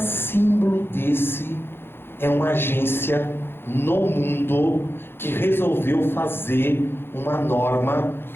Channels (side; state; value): right; late; 0.11 ms